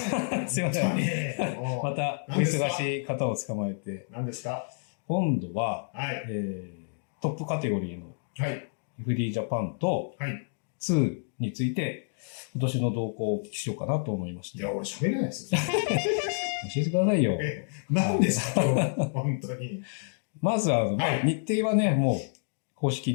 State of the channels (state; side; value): silent; right; digital silence